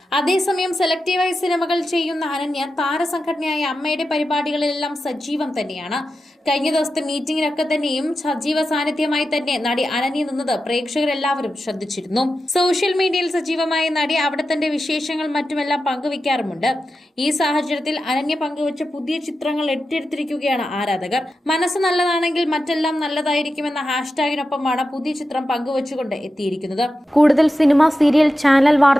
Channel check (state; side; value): normal; both; correlation 0.91